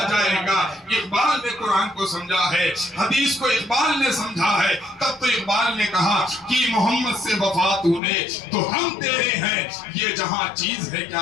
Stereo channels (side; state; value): right; drops out; at 8.0 s